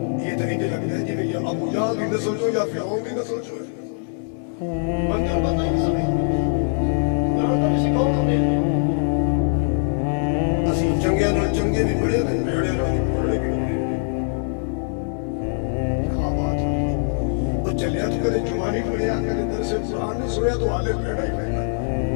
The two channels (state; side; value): silent; right; digital silence